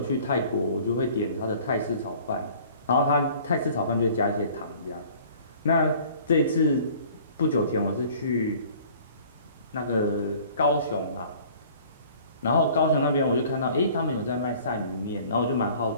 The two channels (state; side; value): inverted; both; correlation -0.51